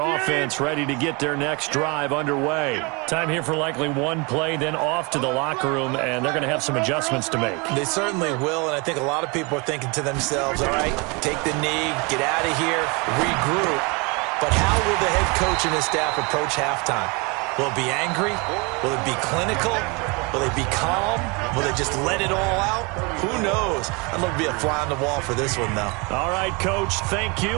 ready to get their next drive underway. Time here for likely one play, then off to the locker room, and they're going to have some adjustments to make. They certainly will, and I think a lot of people are thinking to themselves, all right, take the knee, get out of here, regroup. But how will the head coach and his staff approach halftime? Will it be angry? Will it be clinical? Will they be calm? Will they just let it all out? Who knows? I'd love to be a fly on the wall for this one, though. All right, Coach, thank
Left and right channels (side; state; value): left; quieter; 29.3 dB